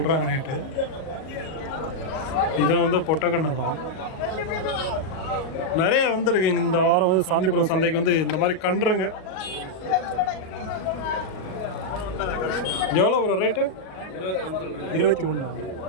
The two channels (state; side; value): late; right; 38 ms